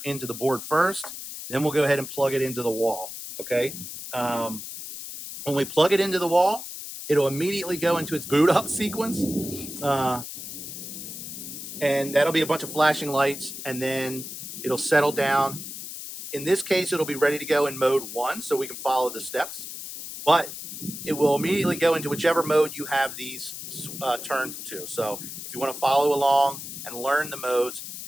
into the board first. Then we'll go ahead and plug it into the wall. Okay. When we plug it into the wall, it'll immediately go into its boot up sequence. And that'll be a bunch of flashing lights, and then it'll settle down. In this case, it'll be ready to go in mode 1, so we can follow the steps. but it will immediately go into whichever mode you have these turned to. So if you want to follow along and learn the modes,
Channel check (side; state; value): left; noise; hiss, 9 dB below the sound